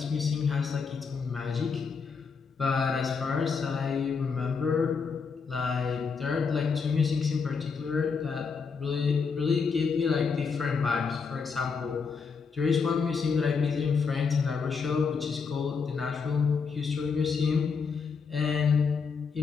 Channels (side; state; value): right; quieter; 5.4 dB